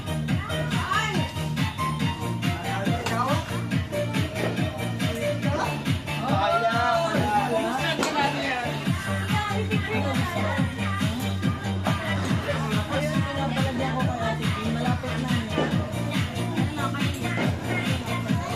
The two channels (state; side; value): identical; both; correlation 1.00